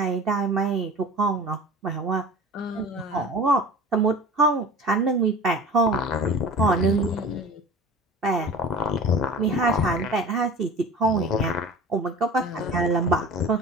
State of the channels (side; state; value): both; normal; correlation 0.38